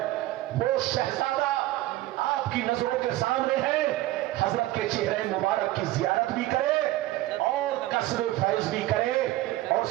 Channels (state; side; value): quieter; left; 16.5 dB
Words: وہ شہزادہ آپ کی نظروں کے سامنے ہے، حضرت کے چہرے مبارک کی زیارت بھی کرے اور قصر فیض بھی کرے، اور